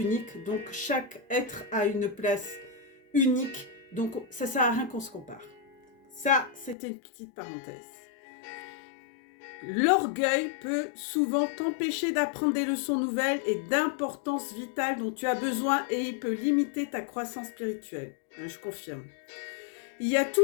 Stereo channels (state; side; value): drops out; right; at 6.8 s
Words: donc chaque être a une place unique, donc ça sert à rien qu'on se compare. Ça, c'était une petite parenthèse. L'orgueil peut souvent t'empêcher d'apprendre des leçons nouvelles et d'importance vitale dont tu as besoin et il peut limiter ta croissance spirituelle. Je confirme. Il y a